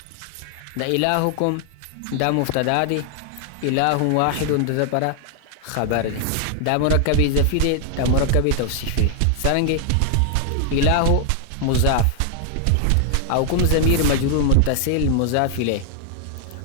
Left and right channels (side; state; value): both; different; correlation 0.00